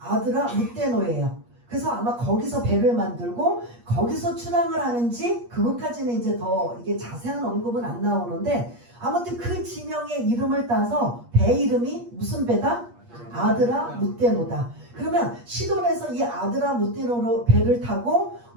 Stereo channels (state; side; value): late; left; 8.4 ms